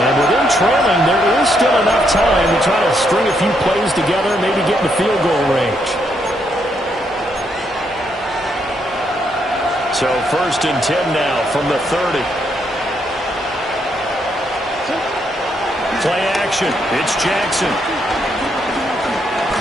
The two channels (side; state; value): both; normal; correlation 0.76